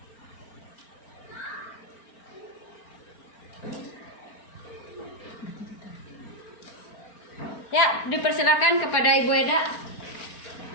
Ya, dipersilakan kepada Ibu Eda.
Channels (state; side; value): late; right; 4.4 ms